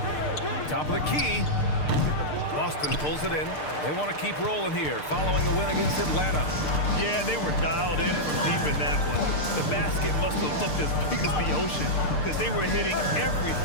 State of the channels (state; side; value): late; right; 6.6 ms